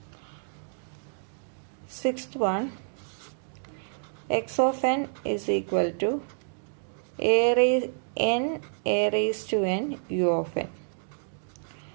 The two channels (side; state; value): left; silent; digital silence